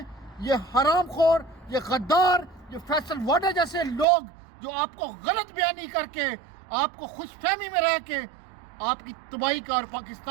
یہ حرام خور، یہ غدار، یہ فیصل واڈا جیسے لوگ جو آپ کو غلط بیانی کر کے، آپ کو خوش فہمی میں رہ کے آپ کی تباہی کا اور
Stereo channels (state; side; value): drops out; left; at 4.0 s